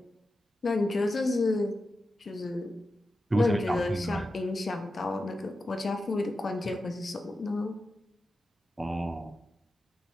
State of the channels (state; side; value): normal; both; correlation 0.91